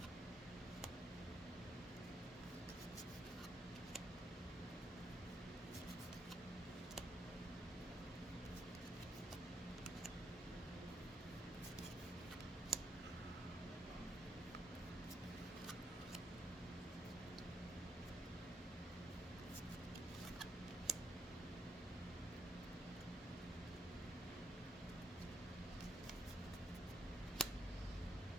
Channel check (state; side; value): normal; both; correlation 0.75